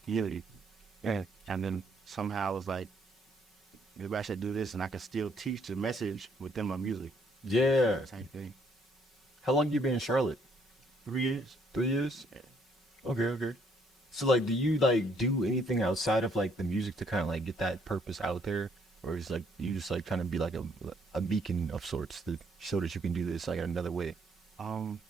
And then somehow it was like, maybe I should do this, and I can still teach the message within my music. Yeah. Same thing. How long you been in Charlotte? 3 years. 3 years? Yeah. Okay. So like, do you like do anything outside of like the music to kind of like get that purpose out there, or is like you just like trying to be like a beacon of sorts to show that you can do this like another way?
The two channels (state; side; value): normal; both; correlation 0.68